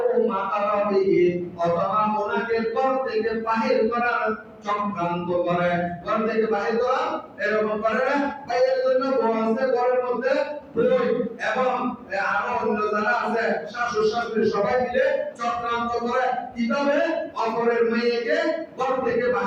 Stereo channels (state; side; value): identical; both; correlation 1.00